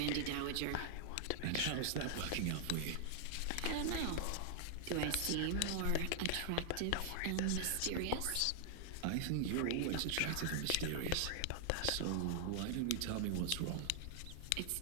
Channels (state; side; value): different; both; correlation 0.00